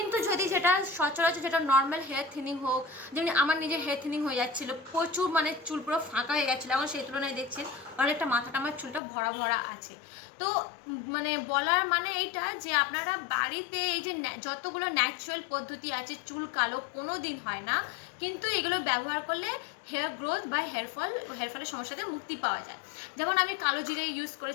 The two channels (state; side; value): drops out; right; at 9.0 s